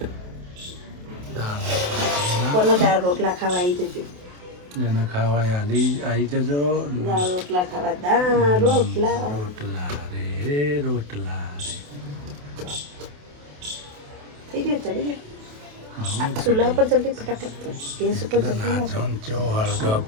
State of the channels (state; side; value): late; left; 28 ms